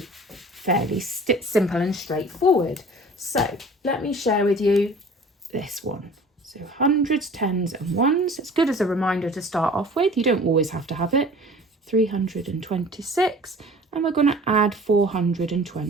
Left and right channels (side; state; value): both; normal; correlation 0.45